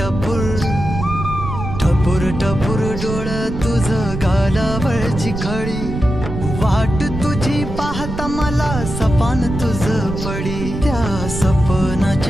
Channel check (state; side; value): noise; right; rumble, 6 dB below the sound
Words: टपूर टपूर डोळ तुझ गालावरची खळी वाट तुझी पाहता मला सपान तुझ पडी त्या